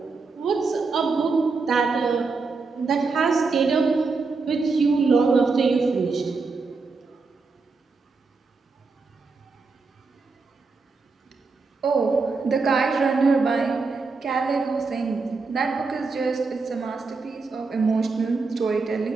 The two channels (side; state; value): left; quieter; 4.3 dB